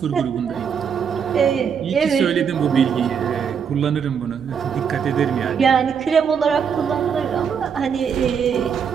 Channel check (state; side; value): quieter; left; 7.1 dB